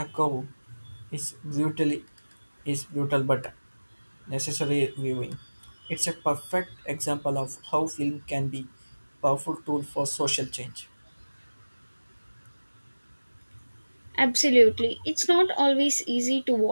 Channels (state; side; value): inverted; both; correlation -1.00